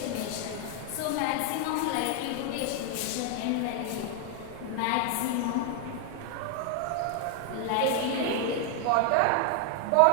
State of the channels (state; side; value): different; both; correlation 0.00